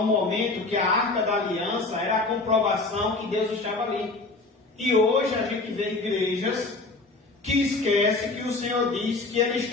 momento que a Arca da Aliança era a comprovação que Deus estava ali. E hoje a gente vê igrejas que esquecem que o Senhor diz que Ele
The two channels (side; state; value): right; quieter; 3.4 dB